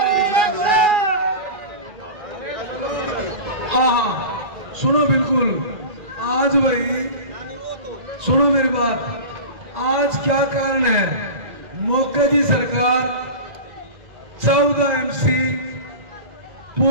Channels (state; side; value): late; left; 2.4 ms